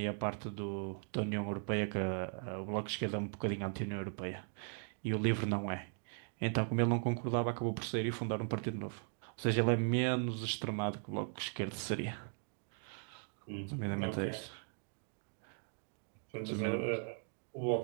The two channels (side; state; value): left; silent; 52 dB below the other